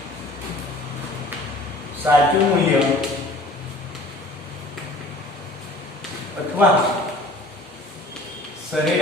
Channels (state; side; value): normal; both; correlation 0.48